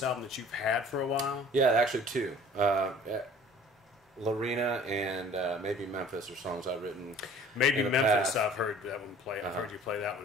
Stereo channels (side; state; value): both; normal; correlation 0.49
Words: album that you've had for a while? Yeah, actually two. Lorena and maybe Memphis are songs I've written. Maybe in the Memphis, past. I've heard that one play. I've heard you play that